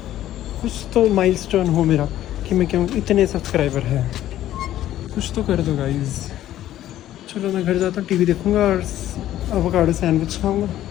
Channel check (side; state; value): right; quieter; 13.0 dB